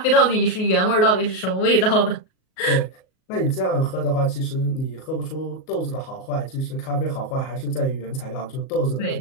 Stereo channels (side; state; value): right; late; 38 ms